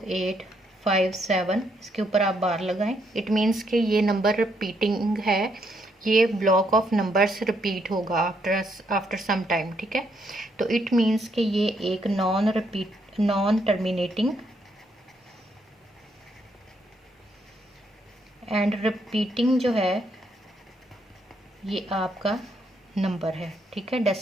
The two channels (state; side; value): normal; both; correlation 0.74